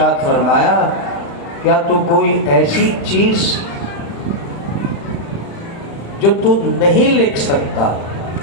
فرمایا کیا تو کوئی ایسی چیز جو تو نہیں لکھ سکتا،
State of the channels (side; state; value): right; late; 35 ms